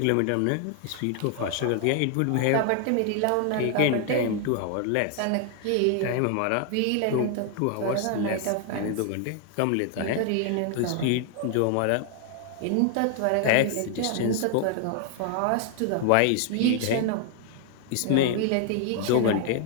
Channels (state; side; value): different; both; correlation 0.00